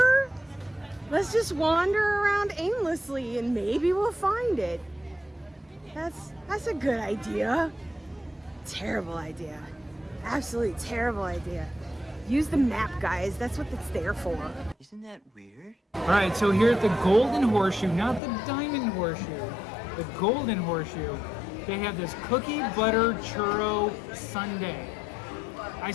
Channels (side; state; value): right; drops out; at 18.2 s